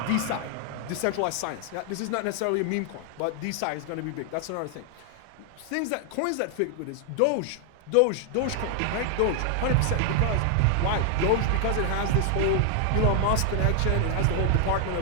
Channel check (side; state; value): both; different; correlation 0.00